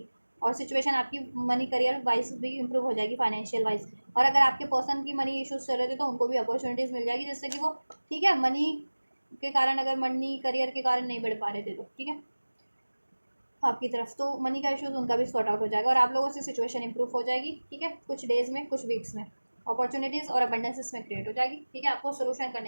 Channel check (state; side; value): inverted; both; correlation -1.00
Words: और सिचुएशन आपकी मनी करियर वाइज भी इंप्रूव हो जाएगी, फाइनेंशियल वाइज। और अगर आपके पर्सन की मनी इश्यूज चल रहे थे, तो उनको भी अपॉर्चुनिटीज़ मिल जाएगी, जिससे कि वो, ठीक है, मनी के कारण, अगर मनी करियर के कारण नहीं बढ़ पा रहे थे तो, ठीक है, आपकी तरफ, तो मनी का इश्यूज उनका भी सॉर्ट आउट हो जाएगा, और आप लोगों से सिचुएशन इंप्रूव हो जाएगी, ठीक है। कुछ डेज में, कुछ वीक्स में अपॉर्चुनिटीज़ और अबंडेंस इसमें क्रिएट हो जाएगी, ठीक है। आपको सोल्यूशन